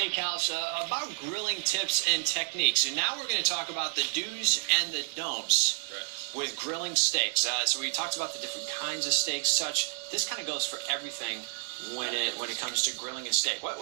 about grilling tips and techniques. And now we're going to talk about the do's and the don'ts with grilling steaks. So we talked about the different kinds of steaks, such. This kind of goes for everything when it comes to grilling a steak.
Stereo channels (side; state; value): left; silent; digital silence